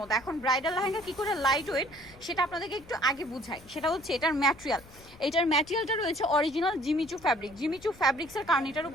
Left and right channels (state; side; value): noise; left; rumble, 23 dB below the sound